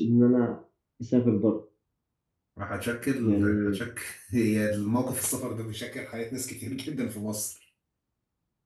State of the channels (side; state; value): both; identical; correlation 1.00